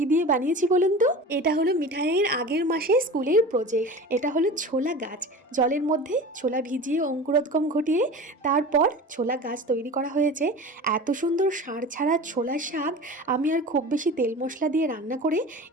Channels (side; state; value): both; normal; correlation 0.35